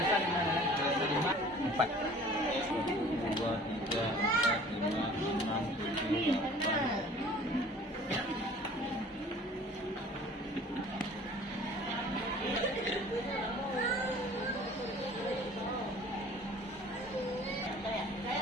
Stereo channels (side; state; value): both; normal; correlation 0.48